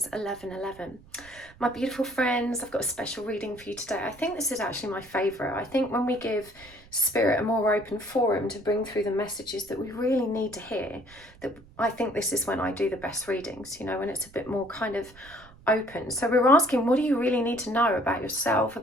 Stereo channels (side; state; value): right; noise; rumble, 23 dB below the sound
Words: 1111. My beautiful friends, I've got a special reading for you today. I think this is actually my favourite. I think when we give spirit a more open forum to bring through the messages that we really need to hear, that I think this is when I do the best readings, you know, when it's a bit more kind of open. So we're asking, what do you really need to know about yourself,